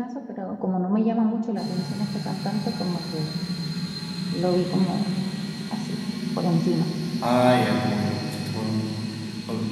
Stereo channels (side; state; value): both; identical; correlation 1.00